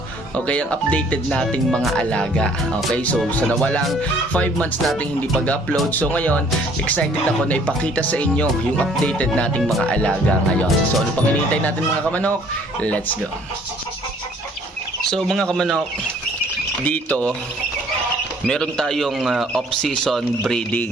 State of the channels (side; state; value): both; normal; correlation 0.58